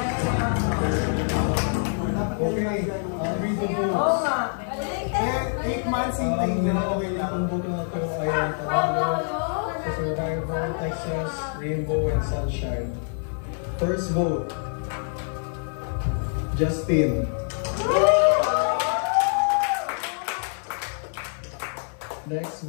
Okay, read the Oo books. nga. 8 months intake na okay lang. Ang book na ito ay ang Tagalog, sa Survivor, Texas, Rainbow, and Sunshine. First vote, Justin. Next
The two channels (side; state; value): right; silent; 61 dB below the other